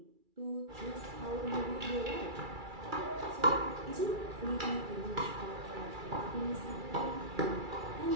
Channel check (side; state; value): left; late; 2.3 ms